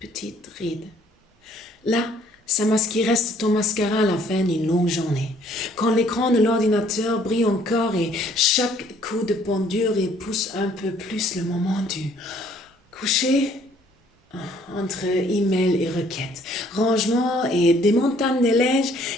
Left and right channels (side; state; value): both; normal; correlation 0.61